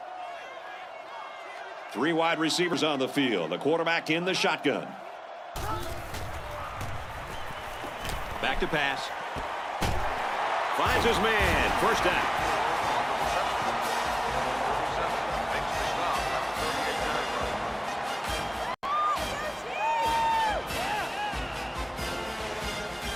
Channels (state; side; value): identical; both; correlation 1.00